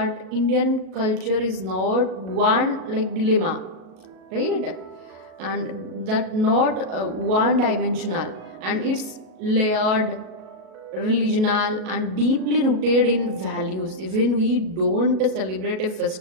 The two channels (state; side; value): late; left; 37 ms